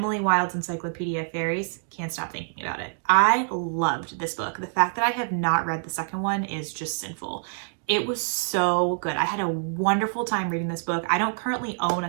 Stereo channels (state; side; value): silent; left; digital silence